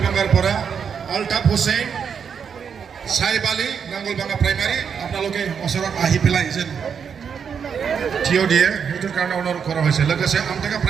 अल्ताफ हुसैन साहिब आली नांगलबांगा प्राइमारि আপোনালোকে ওচৰত আহি পেলাই যেন থিয় দিয়ে সেইটোৰ কাৰণে অনুৰোধ কৰা হৈছে লোকসে আমটেকা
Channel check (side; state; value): left; quieter; 6.9 dB